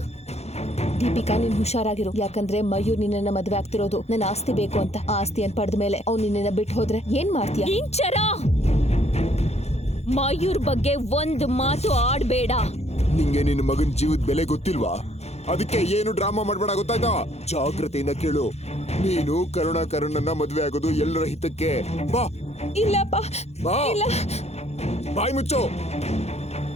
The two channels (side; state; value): right; late; 0.31 ms